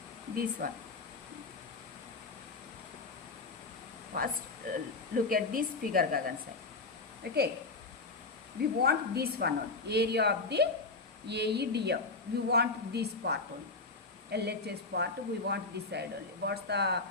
This one. First, look at this figure, Gagan side. Okay, we want this one only. Area of the AEDF. We want this part only. LHS part, we want this side only. What's the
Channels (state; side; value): quieter; right; 3.7 dB